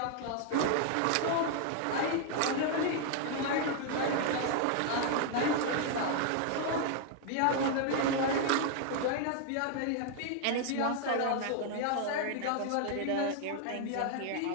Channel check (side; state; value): both; different; correlation 0.00